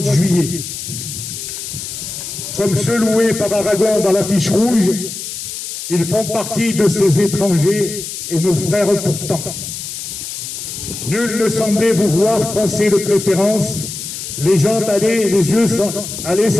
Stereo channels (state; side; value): noise; left; hiss, 8 dB below the sound